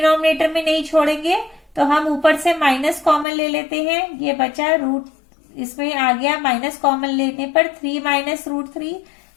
में नहीं छोड़ेंगे तो हम ऊपर से माइनस कॉमन ले लेते हैं। ये बचा इसमें आ गया माइनस कॉमन लेने पर 3 माइनस √3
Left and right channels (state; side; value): drops out; right; at 3.2 s